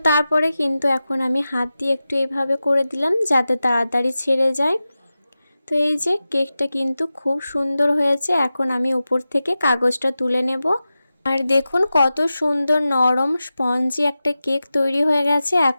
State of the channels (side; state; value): both; inverted; correlation -0.94